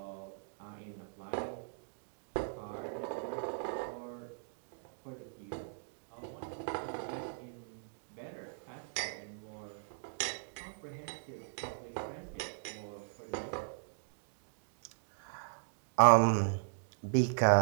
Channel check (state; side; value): silent; left; digital silence